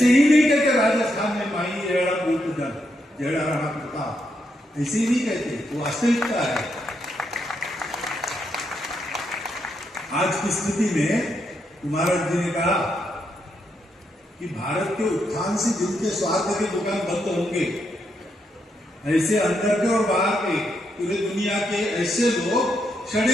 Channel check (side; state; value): both; normal; correlation 0.80